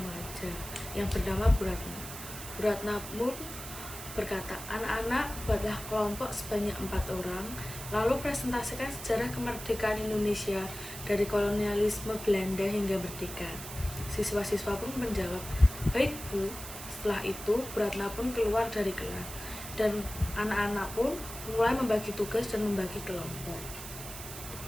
yang bernama Bu Ratna. Bu Ratna pun berkata, "Anak-anak, buatlah kelompok sebanyak 4 orang, lalu presentasikan sejarah kemerdekaan Indonesia dari kolonialisme Belanda hingga merdeka." Siswa-siswa pun menjawab, "Baik, Bu." Setelah itu, Bu Ratna pun keluar dari kelas, dan anak-anak pun mulai membagi tugas dan membagi kelompok.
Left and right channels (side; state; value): right; noise; hiss, 10 dB below the sound